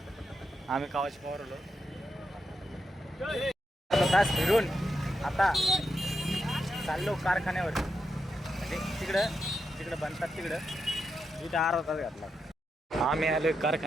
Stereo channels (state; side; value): normal; both; correlation 0.85